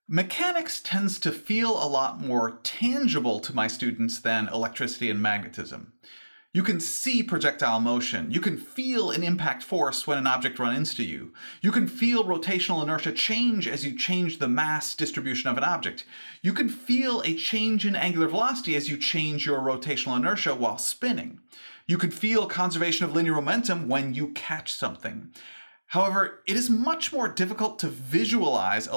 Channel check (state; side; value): inverted; both; correlation -1.00